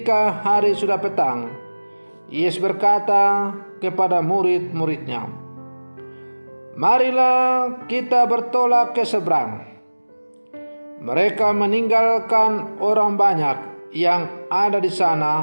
hari sudah petang, Yesus berkata kepada murid-muridnya, "Marilah kita bertolak ke seberang." Mereka meninggalkan orang banyak yang ada di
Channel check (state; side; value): inverted; both; correlation -1.00